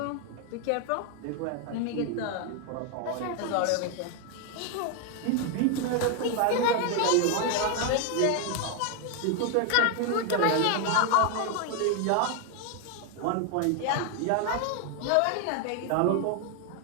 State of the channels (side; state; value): both; different; correlation 0.01